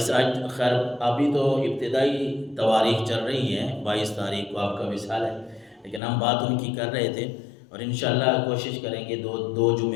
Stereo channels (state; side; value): drops out; right; at 6.0 s